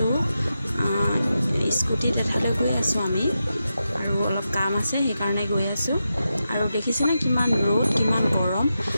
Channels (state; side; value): inverted; both; correlation -0.89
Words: স্কুটিত এঠাইলৈ গৈ আছোঁ আমি, আৰু অলপ কাম আছে সেইকাৰণে গৈ আছোঁ। আৰু দেখিছেনে কিমান ৰ'দ, কিমান গৰম।